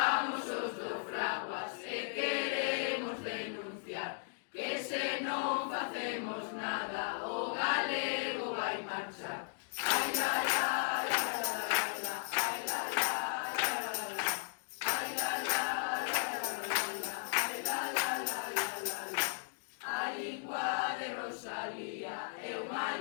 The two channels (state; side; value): silent; right; digital silence